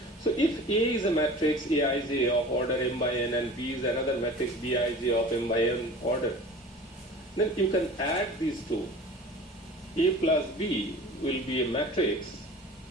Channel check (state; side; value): normal; both; correlation 0.40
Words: So if A is a matrix Aij of order m by n and B is another matrix Bij of m by n order, then you can add these two. A plus B will be a matrix